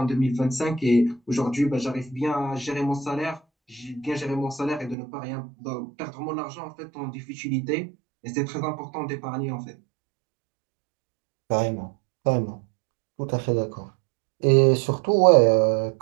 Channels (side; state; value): left; drops out; at 5.0 s